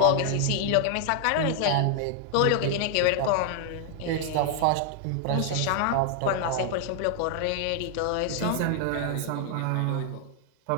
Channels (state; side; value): different; both; correlation 0.00